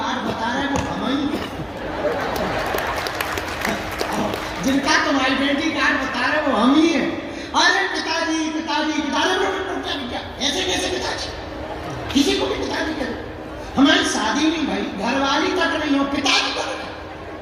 बता रहे वो हम ही हैं। जिनका तुम आइडेंटिटी कार्ड बता रहे वो हम ही हैं। अरे पिताजी पिताजी पिताजी, क्या ऐसे कैसे पिताजी? किसी को भी पिताजी करो, हमारी शादी नहीं भाई, घरवाली तक नहीं हो, पिताजी करो।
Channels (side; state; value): both; identical; correlation 1.00